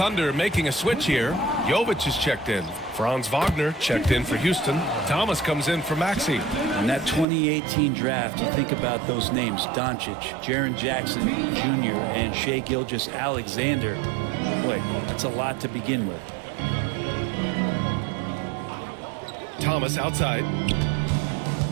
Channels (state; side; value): drops out; left; at 7.2 s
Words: making a switch here. Jovic is checked in. Franz Wagner checked in for Houston. Thomas comes in for Maxey. In that 2018 draft, you think about those names: Doncic, Jaren Jackson Jr., and Shai Gilgeous-Alexander. Boy, that's a lot to begin with. Thomas outside.